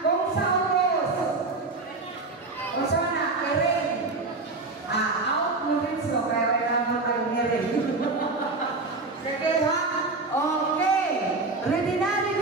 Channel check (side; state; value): left; quieter; 3.5 dB